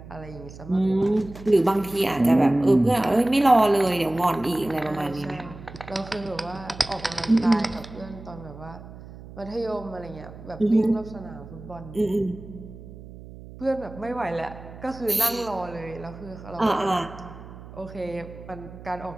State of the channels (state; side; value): noise; right; hum, 16 dB below the sound